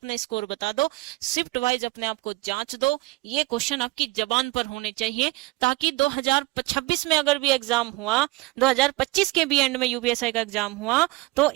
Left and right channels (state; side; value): quieter; left; 21.3 dB